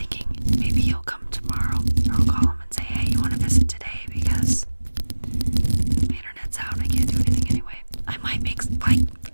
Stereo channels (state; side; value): inverted; both; correlation -1.00